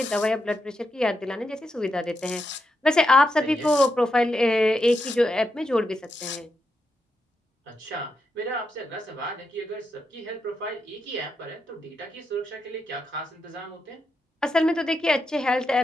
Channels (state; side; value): normal; both; correlation 0.85